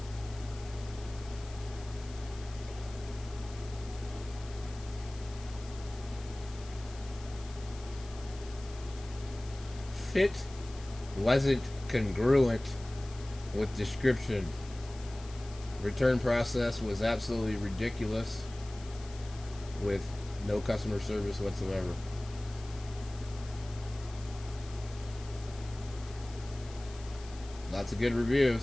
Fit wasn't congruent with description. Return process was absolutely ridiculous, with no customer service whatsoever. Lots of good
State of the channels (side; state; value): left; noise; hiss, 19 dB below the sound